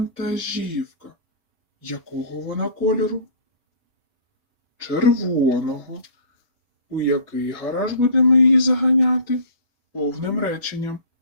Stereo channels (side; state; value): both; inverted; correlation -0.43